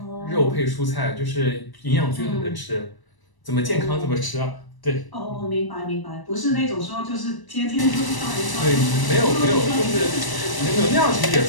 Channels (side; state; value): right; late; 1.0 ms